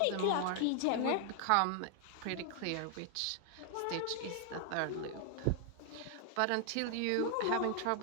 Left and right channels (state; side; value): different; both; correlation 0.00